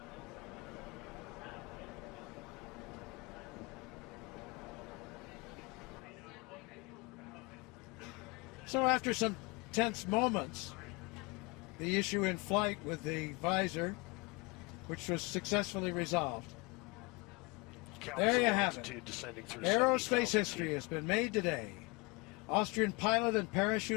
So after some tense moments, the issue in flight with the visor, which was successfully resolved. Capsule There you have it. altitude descending through Aerospace 70,000 history feet. has been made today. Austrian pilot and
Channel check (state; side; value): quieter; right; 27.3 dB